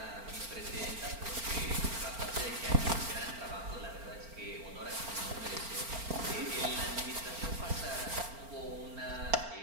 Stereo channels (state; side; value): late; left; 4.4 ms